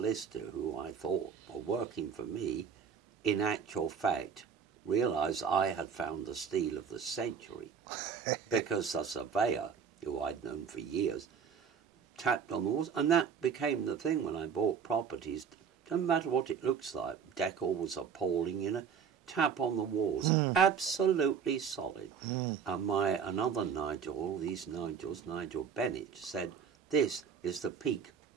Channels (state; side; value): quieter; left; 6.9 dB